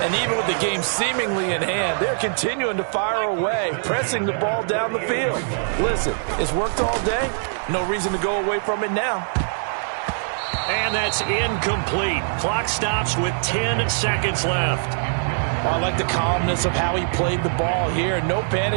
And even with the game seemingly in hand, they're continuing to fire away, pressing the ball down the field. Listen, it's worked all day. No reason to go away from it now. And that's incomplete. Clock stops with 10 seconds left. I like the calmness of how he played the ball here. No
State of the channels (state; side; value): silent; left; 64 dB below the other